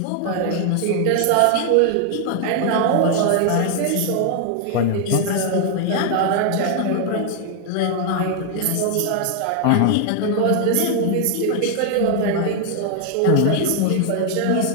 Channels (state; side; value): different; both; correlation 0.00